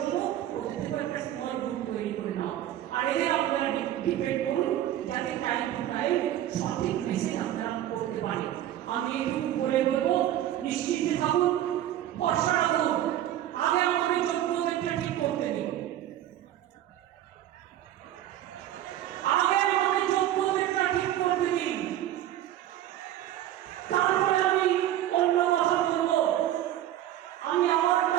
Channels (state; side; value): quieter; left; 12.6 dB